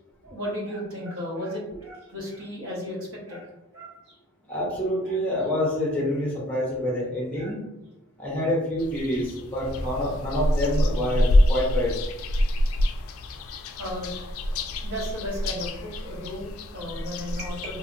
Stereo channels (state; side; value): normal; both; correlation 0.66